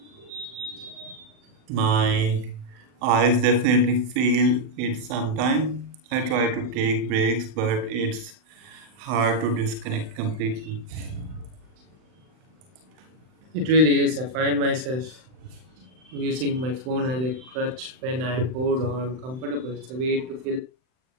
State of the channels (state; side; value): late; left; 39 ms